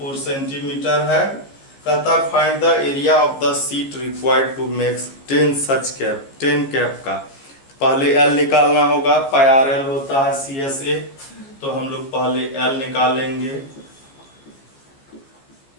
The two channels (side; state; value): right; late; 15 ms